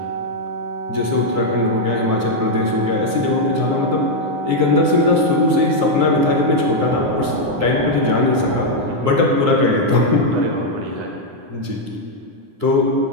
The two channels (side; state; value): left; late; 9.8 ms